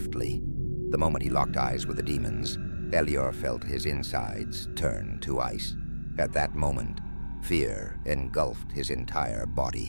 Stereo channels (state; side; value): inverted; both; correlation -1.00